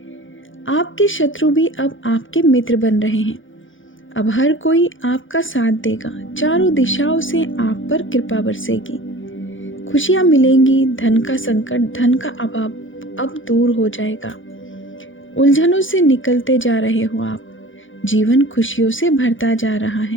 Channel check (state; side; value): late; right; 0.57 ms